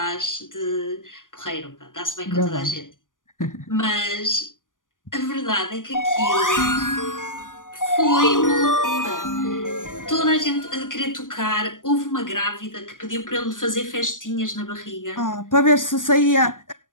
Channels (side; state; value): right; late; 0.88 ms